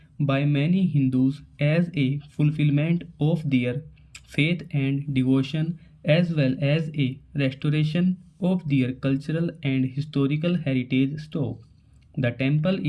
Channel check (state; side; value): identical; both; correlation 1.00